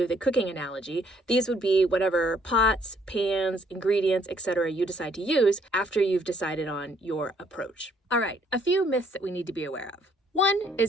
the cooking analogy, these would be whatever pots, pans, ingredients, etc. you decide to use after you've decided on your approach. All right, a few myths that we need to be aware of. One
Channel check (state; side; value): normal; both; correlation 0.66